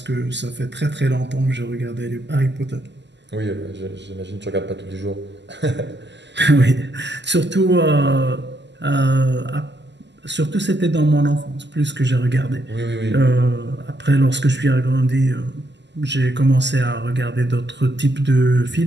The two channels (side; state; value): left; late; 0.51 ms